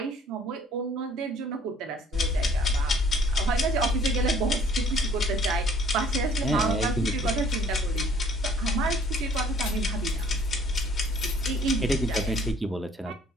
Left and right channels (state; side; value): normal; both; correlation 0.57